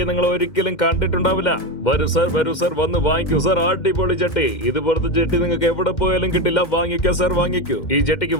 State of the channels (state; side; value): late; right; 2.1 ms